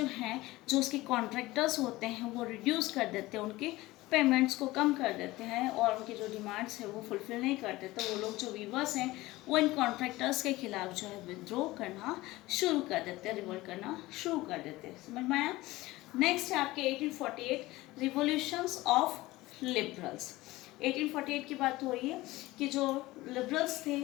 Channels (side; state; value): right; quieter; 18.9 dB